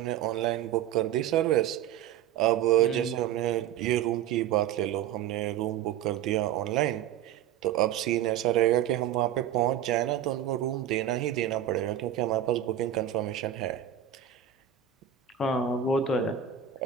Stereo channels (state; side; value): quieter; left; 10.2 dB